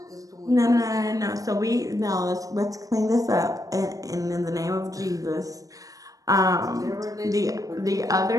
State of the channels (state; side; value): late; left; 0.17 ms